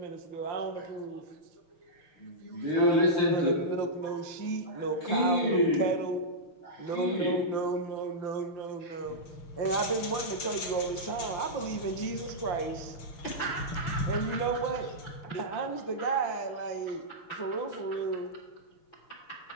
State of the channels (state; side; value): late; right; 6.6 ms